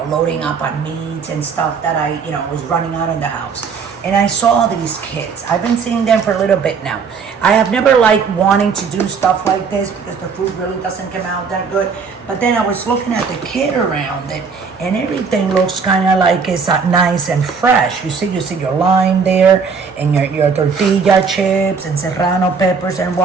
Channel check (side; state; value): left; quieter; 5.6 dB